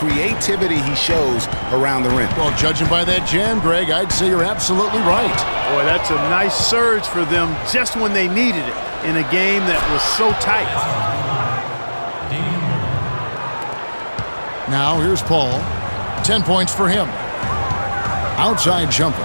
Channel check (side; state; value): both; inverted; correlation -1.00